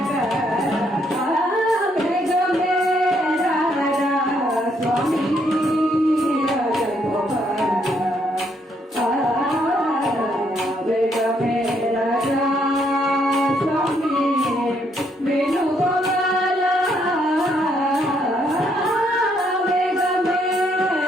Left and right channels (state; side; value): normal; both; correlation 0.72